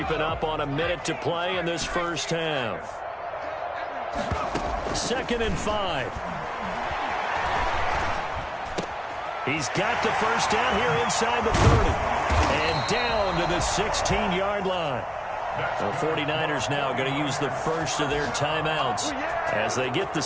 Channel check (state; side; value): identical; both; correlation 1.00